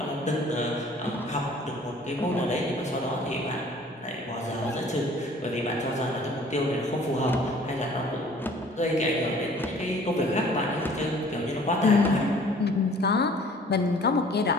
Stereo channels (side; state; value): both; normal; correlation 0.52